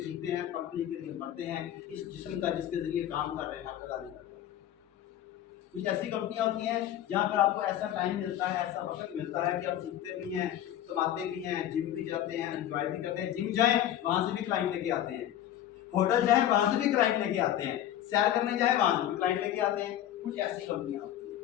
जीते हैं, कंपनी के लिए मरते हैं, इस जिस्म का जिसके जरिए काम कर रहे हैं हक अदा नहीं करता। कुछ ऐसी कंपनियां होती हैं जहां पर आपको ऐसा टाइम मिलता है, ऐसा वक्त मिलता है कि आप सीखते भी हैं, कमाते भी हैं, जिम भी जाते हैं, एंजॉय भी करते हैं। जिम जाएं वहां से भी क्लाइंट लेके आते हैं, होटल जाएं वहां से भी क्लाइंट लेके आते हैं, सैर करने जाएं वहां से भी क्लाइंट लेके आते हैं। कुछ ऐसी कंपनियां होती हैं।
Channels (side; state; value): right; quieter; 11.8 dB